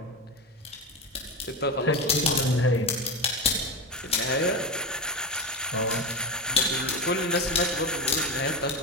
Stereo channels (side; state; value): both; normal; correlation 0.18